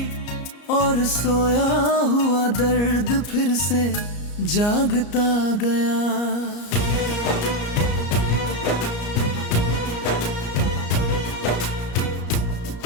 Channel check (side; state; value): right; late; 34 ms